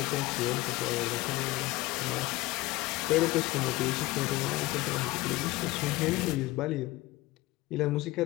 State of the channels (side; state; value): right; quieter; 19.5 dB